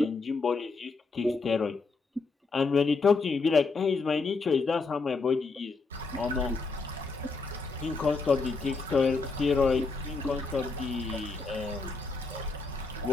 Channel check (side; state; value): right; quieter; 4.1 dB